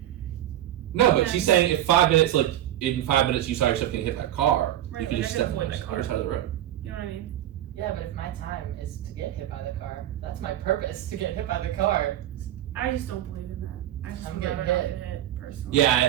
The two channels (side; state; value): left; quieter; 12.6 dB